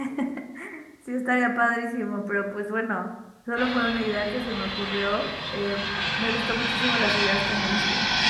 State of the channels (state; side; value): identical; both; correlation 1.00